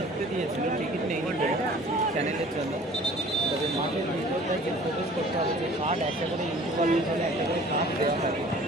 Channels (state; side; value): normal; both; correlation 0.48